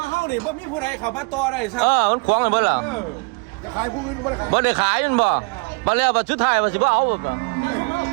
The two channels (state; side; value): quieter; left; 31.0 dB